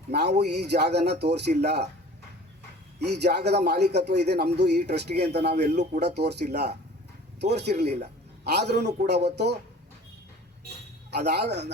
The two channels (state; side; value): normal; both; correlation 0.45